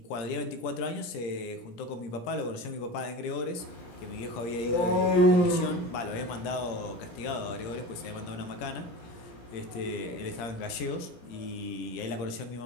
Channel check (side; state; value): right; late; 17 ms